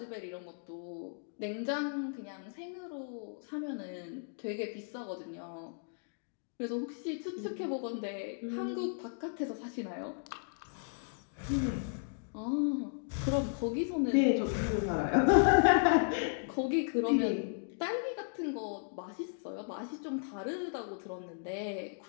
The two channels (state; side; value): silent; right; digital silence